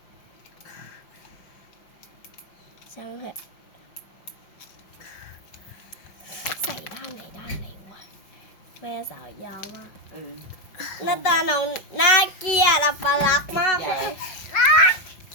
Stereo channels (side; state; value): right; late; 5.4 ms